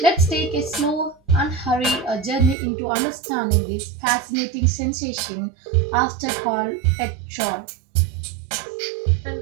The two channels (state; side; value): drops out; left; at 2.6 s